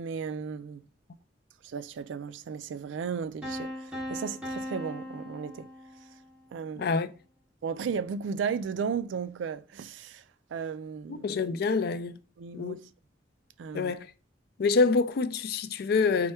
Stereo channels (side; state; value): both; normal; correlation 0.10